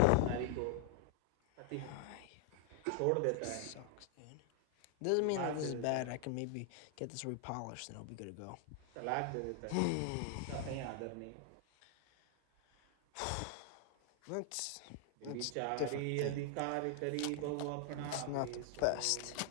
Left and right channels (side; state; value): both; different; correlation 0.00